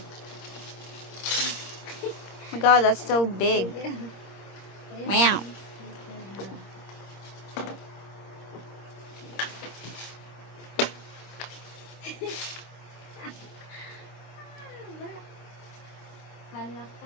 my god, that's so big. Wow. Hala ka,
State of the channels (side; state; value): right; late; 25 ms